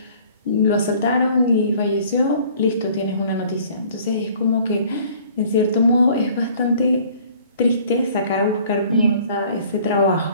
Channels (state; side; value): inverted; both; correlation -0.54